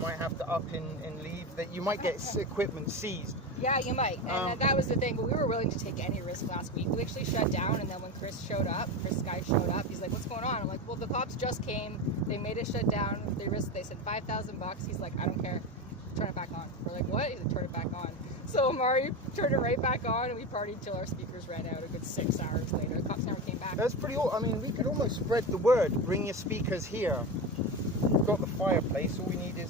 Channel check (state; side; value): normal; both; correlation 0.20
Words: have to up and leave, that you might get equipment seized. Yeah, you might. And that was the thing. But we were willing to take any risk last week. We actually shut down, and then when Chris Guy showed up, he's like, "What's going on?" I'm like, "Well, the cops just came. They made us shut down. They said $5,000." He's like, "I don't care. Turn it back on." We're like, "What?" He's like, "Turn it back on." So Amari turned it right back on, and we partied till our speakers ran out. A good 6 hours later, the cops never came back. That's pretty. I mean, we could almost spread the word. Bring your speakers here. We've got the fireplace. All we need is